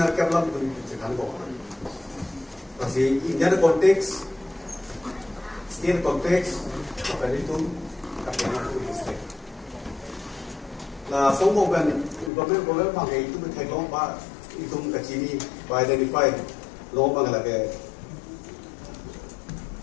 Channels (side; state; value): right; drops out; at 12.3 s